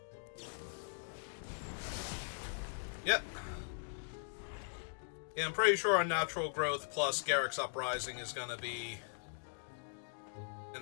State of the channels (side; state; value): right; silent; digital silence